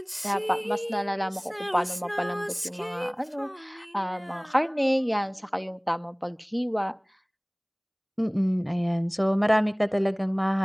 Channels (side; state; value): both; identical; correlation 1.00